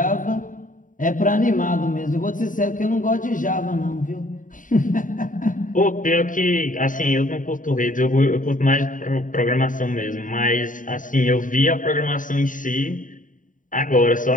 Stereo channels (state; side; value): late; right; 0.38 ms